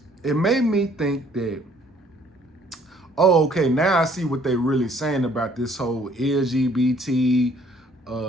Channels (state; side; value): normal; both; correlation 0.61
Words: It made me think that, oh, okay, now I see what they really saying about this whole LGBT